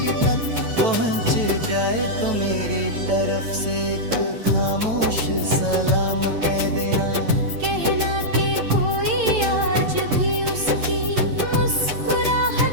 तक पहुँच जाए तो मेरी तरफ से एक खामोश सलाम कह देना। कहना कि कोई आज भी उसकी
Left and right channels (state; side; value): late; left; 8.9 ms